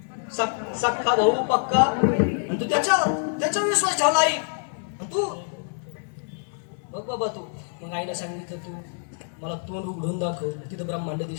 सख्खा भाऊ पक्का, आणि तू त्याच्या विश्वास ठेवला आई. आणि तू बघ बाबा तू. मग आईने सांगितलं तू मला तोंड उघडून दाखव. तिथं ब्रह्मांड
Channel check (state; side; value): silent; right; 61 dB below the other